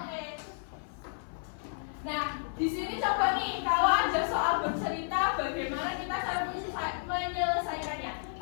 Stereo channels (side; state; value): right; silent; 57 dB below the other